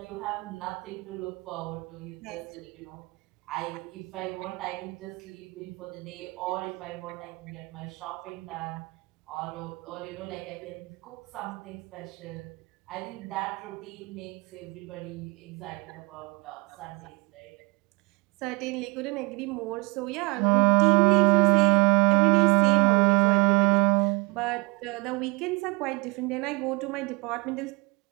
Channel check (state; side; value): quieter; left; 28.3 dB